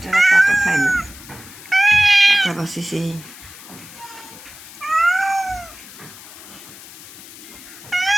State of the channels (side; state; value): left; noise; hiss, 17 dB below the sound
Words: কাটা খায় না, কাটা বাঁচিছি।